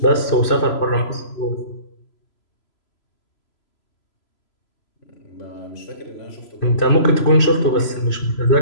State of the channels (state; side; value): late; right; 3.0 ms